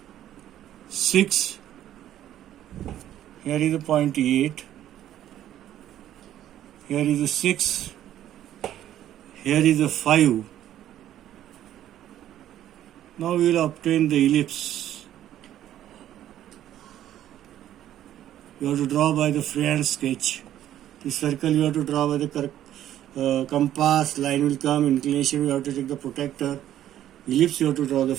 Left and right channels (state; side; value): quieter; left; 11.9 dB